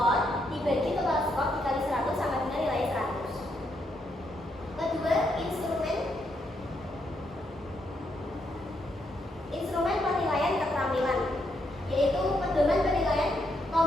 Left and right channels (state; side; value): normal; both; correlation 0.78